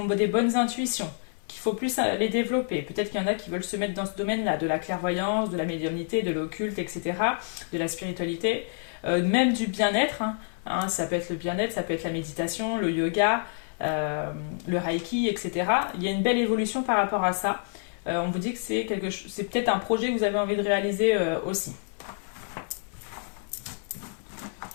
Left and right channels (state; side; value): silent; right; digital silence